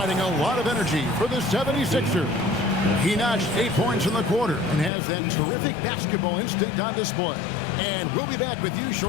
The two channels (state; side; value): drops out; right; at 4.9 s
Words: a lot of energy for the 76ers. He notched 8 points in the quarter and has that terrific basketball instinct on display. And we'll be back with you